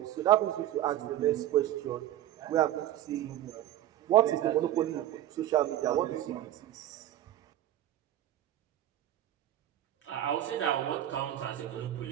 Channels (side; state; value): left; quieter; 12.7 dB